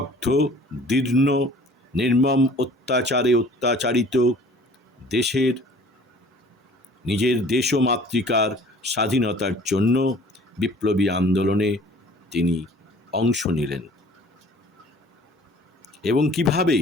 দীর্ণ, নির্মম অত্যাচারে অত্যাচারিত দেশের, নিজের দেশ ও মাতৃকার স্বাধীনতার জন্য বিপ্লবী আন্দোলনে তিনি অংশ নিলেন এবং কিভাবে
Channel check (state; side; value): normal; both; correlation 0.50